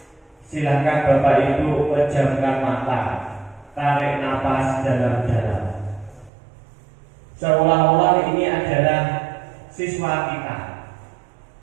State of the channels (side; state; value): left; drops out; at 6.3 s